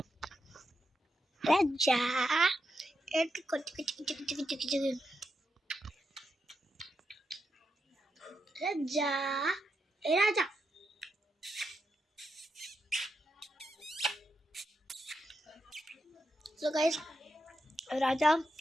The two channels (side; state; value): both; normal; correlation 0.85